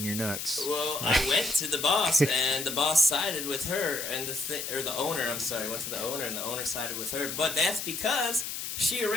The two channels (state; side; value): noise; left; hiss, 5 dB below the sound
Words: your nuts? Well, I went to the boss, and the boss sided with her, and the owner, I'm sorry, went to the owner, and the owner sided with her. But that's because she